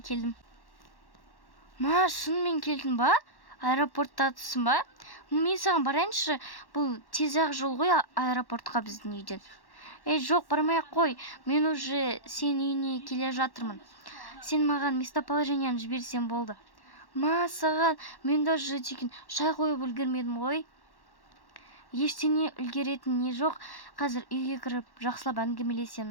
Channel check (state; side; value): late; right; 1.1 ms